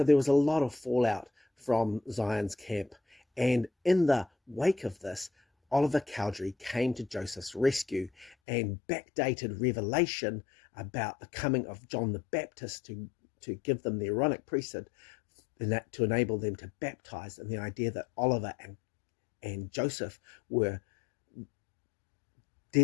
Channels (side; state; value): right; drops out; at 8.3 s